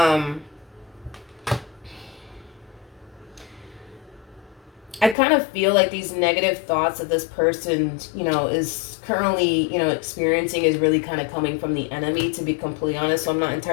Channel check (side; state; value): right; drops out; at 5.2 s